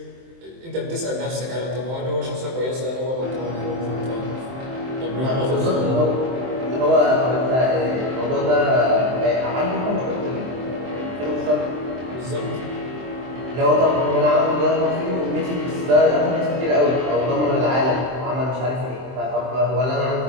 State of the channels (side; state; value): left; late; 23 ms